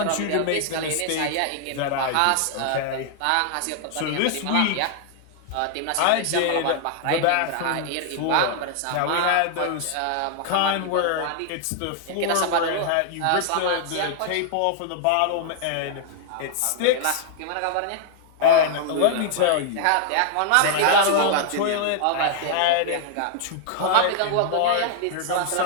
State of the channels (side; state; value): both; different; correlation -0.01